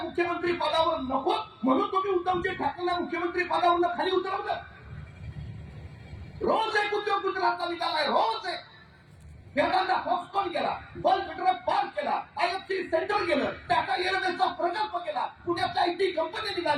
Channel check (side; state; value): both; identical; correlation 1.00